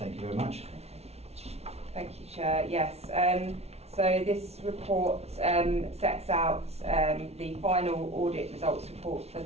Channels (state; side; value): late; left; 0.31 ms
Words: you very much. Okay. Thank you, Chair. Yes, so this report sets out the final audit results report for